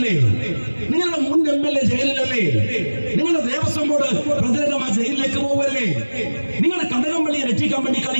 നിങ്ങളുടെ മുൻ MLA ജയിലിലല്ലേ? നിങ്ങളുടെ ദേവസ്വം ബോർഡ് പ്രസിഡന്റ് ആ ജയിലിലേക്ക് പോവല്ലേ? നിങ്ങൾ കടകംപള്ളിയെ രക്ഷിക്കാൻ വേണ്ടി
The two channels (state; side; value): inverted; both; correlation -1.00